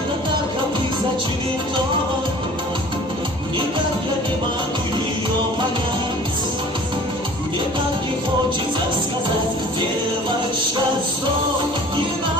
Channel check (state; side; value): normal; both; correlation 0.46